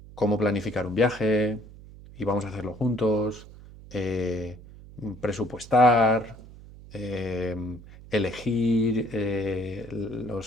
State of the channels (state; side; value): noise; right; hum, 18 dB below the sound